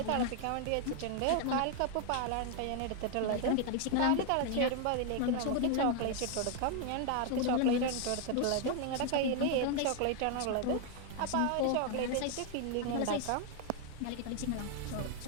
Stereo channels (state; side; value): different; both; correlation 0.00